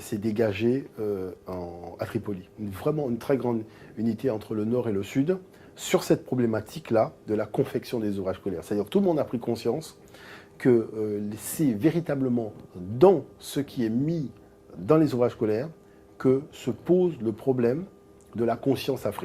dégagée à Tripoli. Vraiment une très grande unité entre le nord et le sud sur cette problématique-là de la confection des ouvrages scolaires. C'est-à-dire que tout le monde a pris conscience que c'est véritablement dans ce qui est mis dans les ouvrages scolaires que se pose le problème de la conscience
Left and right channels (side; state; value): both; identical; correlation 1.00